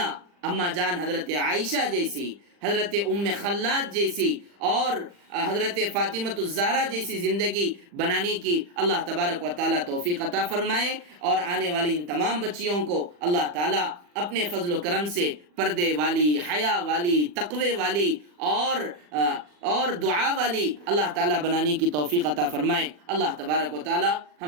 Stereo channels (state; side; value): late; left; 40 ms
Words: اما جان حضرت عائشہ جیسی، حضرت ام خلاد جیسی اور حضرت فاطمۃ الزہرا جیسی زندگی بنانے کی اللہ تبارک و تعالیٰ توفیق عطا فرمائے، اور آنے والی ان تمام بچیوں کو اللہ تعالیٰ اپنے فضل و کرم سے پردے والی، حیا والی، تقوی والی اور دعا والی اللہ تعالیٰ بنانے کی توفیق عطا فرمائے۔ اللہ تبارک و تعالیٰ